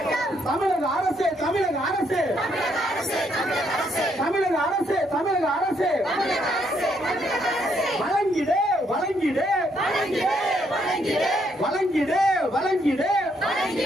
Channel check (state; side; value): normal; both; correlation 0.73